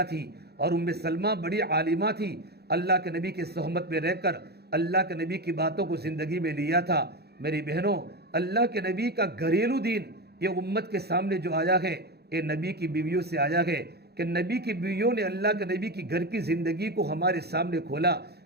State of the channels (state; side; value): late; left; 0.47 ms